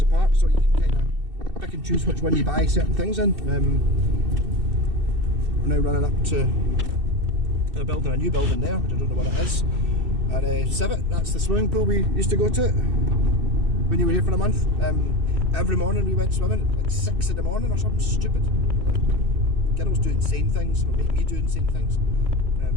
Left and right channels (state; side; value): late; left; 2.6 ms